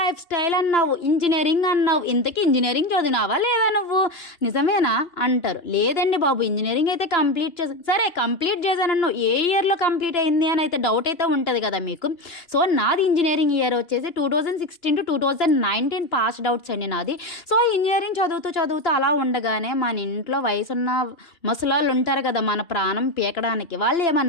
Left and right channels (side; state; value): right; late; 2.9 ms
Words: స్టైల్ అన్నావు, ఇంజనీరింగ్ అన్నావు, ఇంతకీ ఇంజనీరింగ్ చదివినావా లేదా నువ్వు, నిజమేనా అంటారు. లేదండి బాబు ఇంజనీరింగ్ అయితే కంప్లీట్ సరే కంప్లీట్ చేశానన్ను, ఏ ఇయర్లో కంప్లీట్ అయింది అని అయితే డౌట్ అయితే ఉంటుంది కదా మీకు. సో నాది ఇంజనీరింగ్ ఇయర్ వచ్చేసి 2016 to 2019 పాస్డ్ అవుట్స్ అండి నాది. సో ఇంజనీరింగ్ చదువుతూ అలా ఉండగానే మన ఇంట్లో వయసున్న ముసలాళ్ళు ఉంటారు కదా మన ప్రాణం పీకడానికి, వాళ్ళు